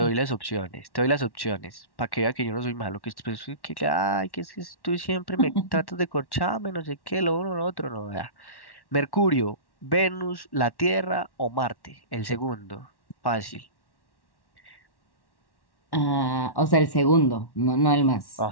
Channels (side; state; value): right; late; 1.1 ms